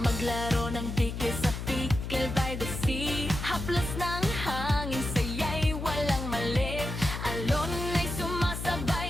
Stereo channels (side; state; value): left; noise; hum, 6 dB below the sound